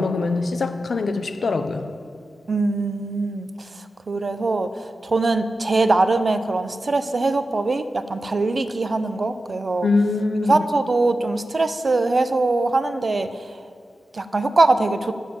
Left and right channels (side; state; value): both; normal; correlation 0.92